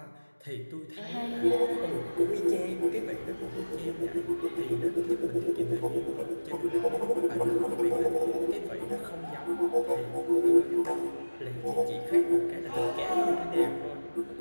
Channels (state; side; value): inverted; both; correlation -1.00